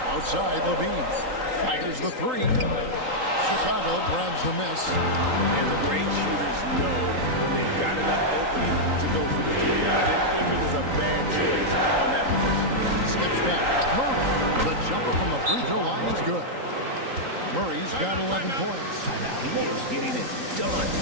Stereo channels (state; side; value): late; left; 3.8 ms